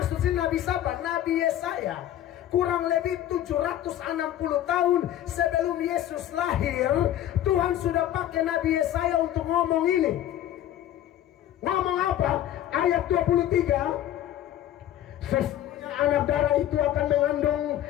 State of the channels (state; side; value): quieter; right; 12.2 dB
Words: sini Nabi siapa? Nabi Yesaya. Kurang lebih 760 tahun sebelum Yesus lahir, Tuhan sudah pakai Nabi Yesaya untuk ngomong ini. Ngomong apa? Ayat 23. Sesungguhnya anak darah itu akan mengandung